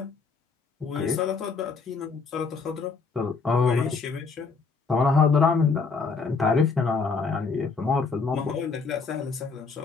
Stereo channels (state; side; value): quieter; right; 4.8 dB